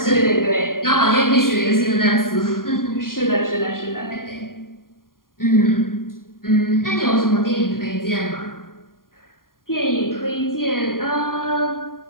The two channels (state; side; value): late; right; 0.91 ms